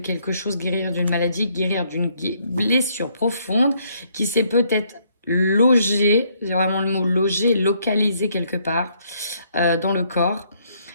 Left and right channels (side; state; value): both; inverted; correlation -0.69